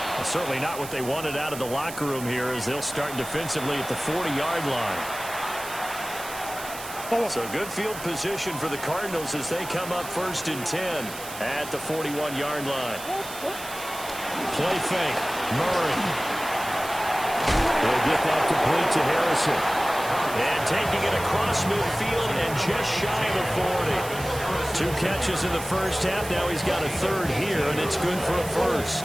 certainly not what they wanted out of the locker room here, as they'll start defensively at the 40-yard line. So good field position for the Cardinals as they come up first and 10 at the 41-yard line. Play fake. Murray. They'll get that complete to Harrison. And taking it across midfield and just shy of the 40. 2 catches in the first half. Now he's got a third here, and it's good for a first.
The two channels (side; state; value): right; noise; hiss, 12 dB below the sound